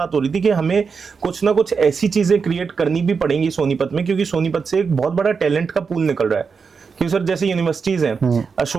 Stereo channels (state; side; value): quieter; left; 5.5 dB